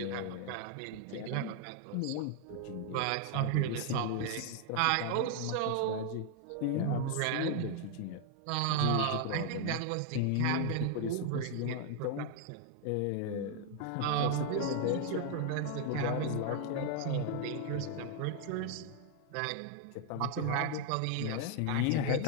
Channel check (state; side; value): different; both; correlation 0.00